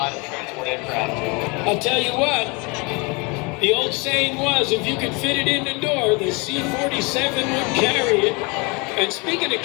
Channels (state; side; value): quieter; right; 29.3 dB